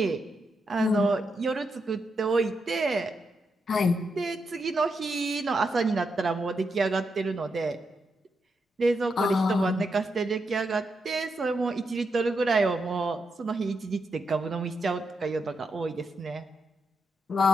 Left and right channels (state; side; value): normal; both; correlation 0.83